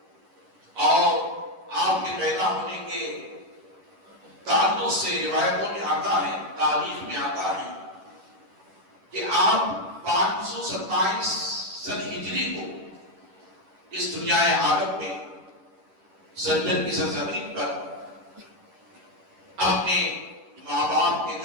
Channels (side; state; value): left; late; 11 ms